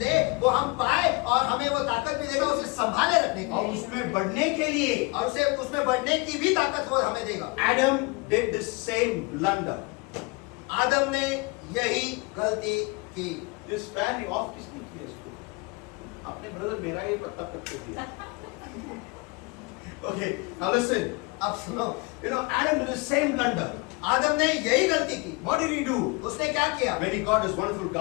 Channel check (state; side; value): quieter; right; 27.4 dB